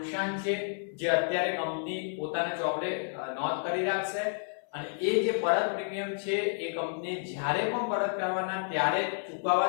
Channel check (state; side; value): silent; right; 57 dB below the other